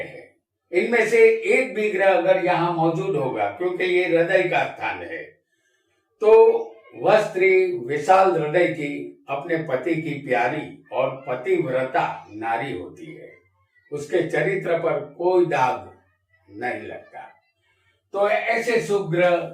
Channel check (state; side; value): identical; both; correlation 1.00